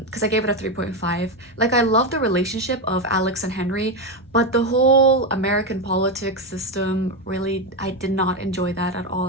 I gave it a 3.5. I love the relationship of Alex and Henry, but the whole American politics system, really, I did not enjoy that at all.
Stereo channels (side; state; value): both; normal; correlation 0.10